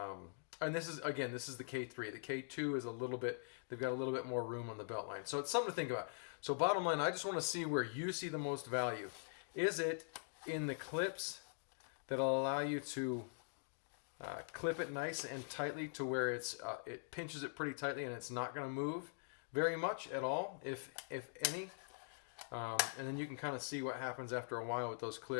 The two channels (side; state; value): right; silent; digital silence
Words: this is, again, this is the K3. The K2 is a little bit, they've got a little bit more room on the belt line. So it's something to think about. So bottom line, I just want to see where you see the most value. Is it in the clips that'll allow you to clip it nice and tightly to where it's it pinches it pretty tightly and it's not going to move very much at all, if any. And then you can kind of see what happens after a while with those